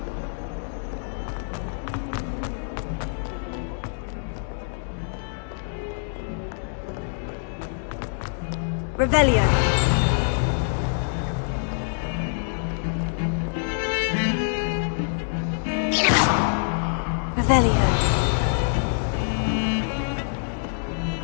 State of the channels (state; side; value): silent; right; digital silence